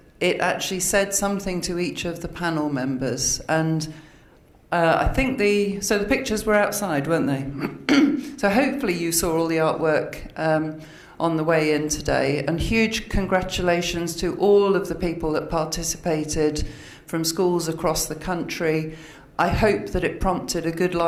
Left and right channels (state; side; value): identical; both; correlation 1.00